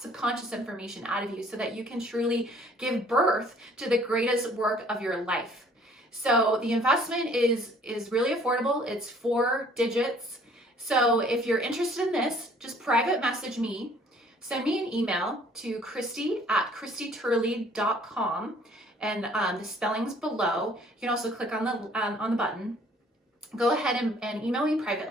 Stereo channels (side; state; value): both; normal; correlation 0.57